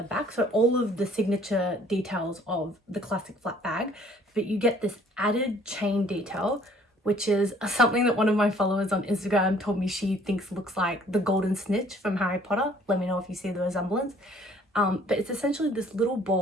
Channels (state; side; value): normal; both; correlation 0.58